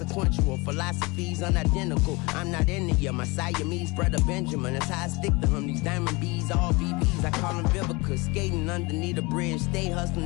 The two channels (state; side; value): quieter; right; 25.5 dB